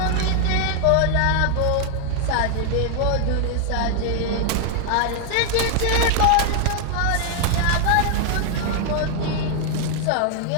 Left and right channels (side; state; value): both; different; correlation 0.00